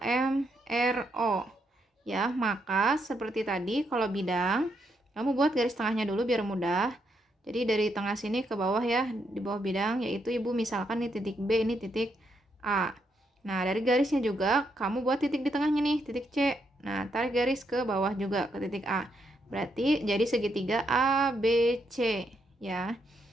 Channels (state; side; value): normal; both; correlation 0.78